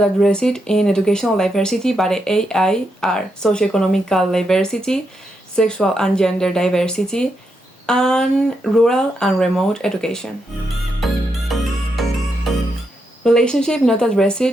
addressed in educational diversity by the AI are socioeconomical diversity, sexual and gender diversity, and rural and remote education. Relationships not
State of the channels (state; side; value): normal; both; correlation 0.82